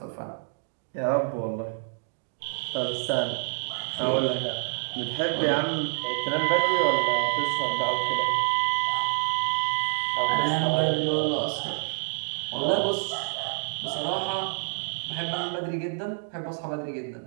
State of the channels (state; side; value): silent; left; digital silence